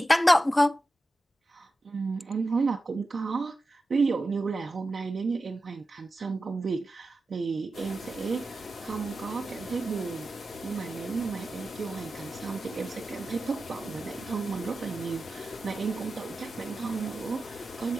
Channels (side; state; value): both; normal; correlation 0.92